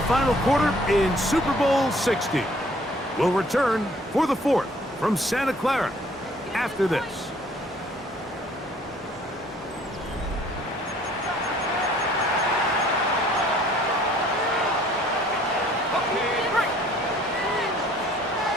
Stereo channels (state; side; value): normal; both; correlation 0.58